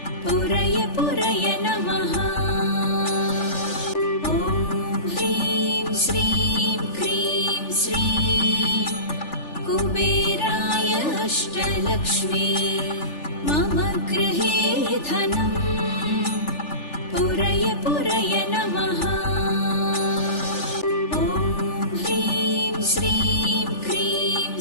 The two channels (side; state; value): right; late; 3.4 ms